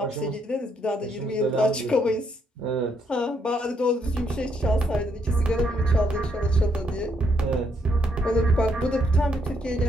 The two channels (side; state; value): both; normal; correlation 0.74